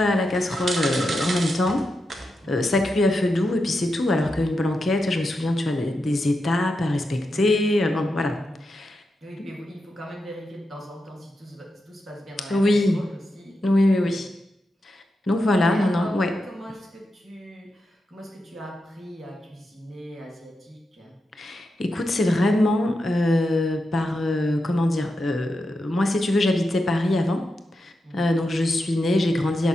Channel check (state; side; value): normal; both; correlation 0.87